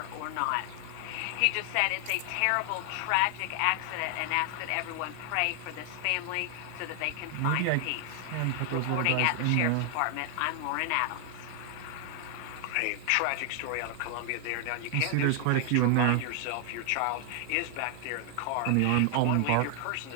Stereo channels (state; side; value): different; both; correlation 0.00